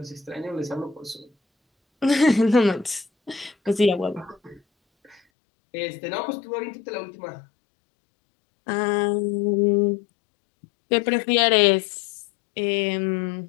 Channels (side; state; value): right; drops out; at 5.2 s